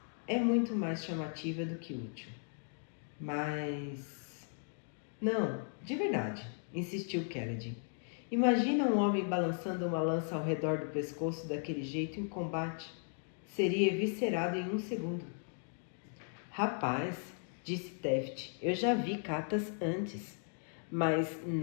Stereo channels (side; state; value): right; silent; 53 dB below the other